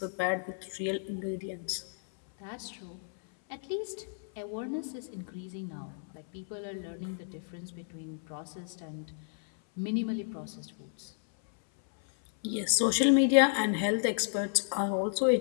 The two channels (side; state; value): right; silent; 56 dB below the other